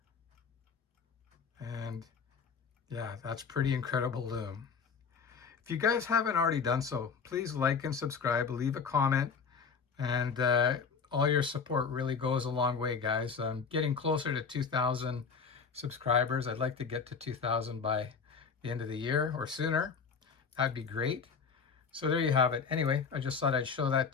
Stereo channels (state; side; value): quieter; right; 5.7 dB